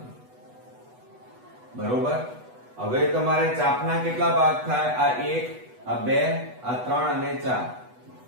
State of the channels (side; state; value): left; late; 8.1 ms